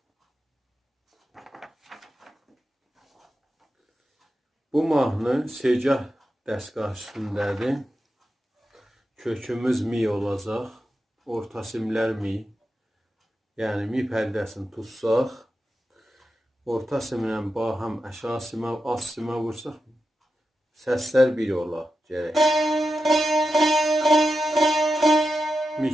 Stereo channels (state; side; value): normal; both; correlation 0.89